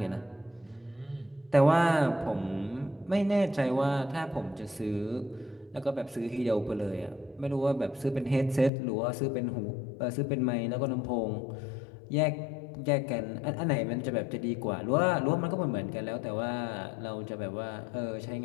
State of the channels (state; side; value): drops out; right; at 8.7 s